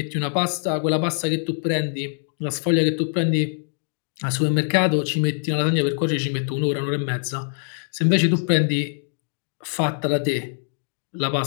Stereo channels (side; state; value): right; silent; digital silence